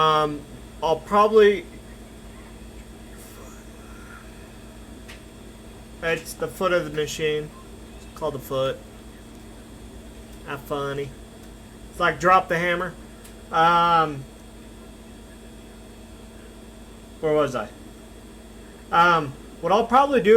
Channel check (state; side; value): identical; both; correlation 1.00